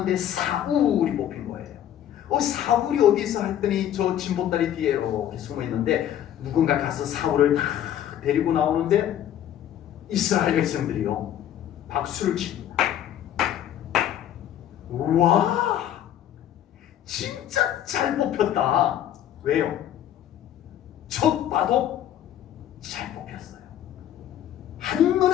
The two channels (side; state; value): right; quieter; 11.1 dB